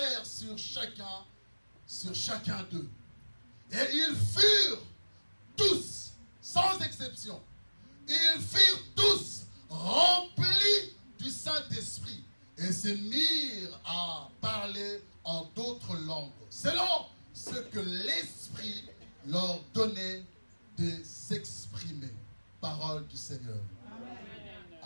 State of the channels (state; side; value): inverted; both; correlation -1.00